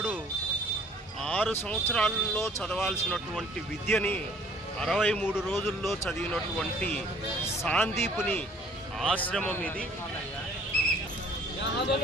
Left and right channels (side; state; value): both; normal; correlation 0.56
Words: 6 సంవత్సరాల్లో చదవాల్సినటువంటి విద్యని 63 రోజుల్లో చదివినటువంటి సాందీపుని ఆశ్రమం ఇది.